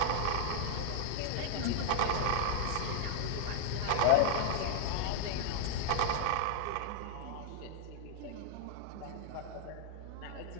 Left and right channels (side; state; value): both; different; correlation 0.00